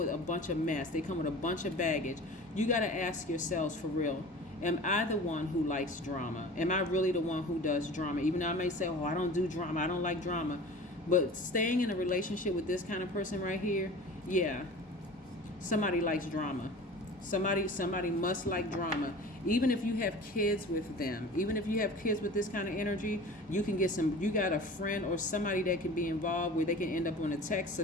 a bunch of mess, they come with a bunch of baggage, you got to ask yourselves for real, am I the one who likes drama? Am I really the one who does drama? Even though I may say, oh, I don't do drama, I don't like drama. But staying in a relationship with this kind of person right here, yeah, somebody likes drama. Somebody must like drama. Even if you have kids with them, even if you have kids with this kind of energy, you got a friend or somebody that can be involved where they can end up on a text so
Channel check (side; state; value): both; normal; correlation 0.39